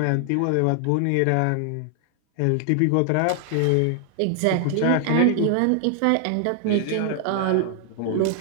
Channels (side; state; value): both; different; correlation 0.00